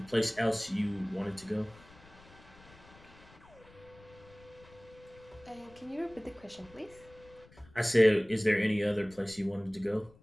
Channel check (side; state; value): left; noise; rumble, 24 dB below the sound